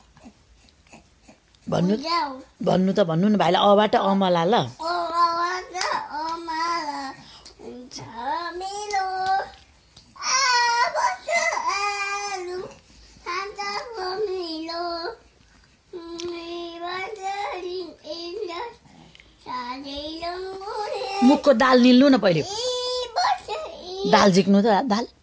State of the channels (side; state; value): both; identical; correlation 1.00